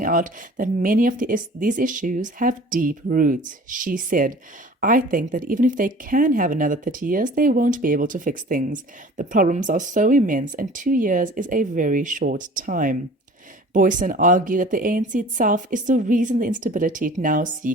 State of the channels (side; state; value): both; normal; correlation 0.45